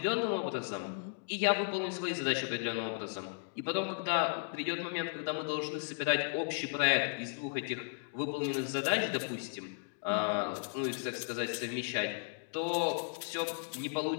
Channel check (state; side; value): silent; right; digital silence